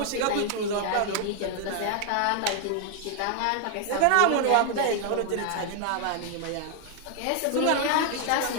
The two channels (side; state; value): both; different; correlation 0.00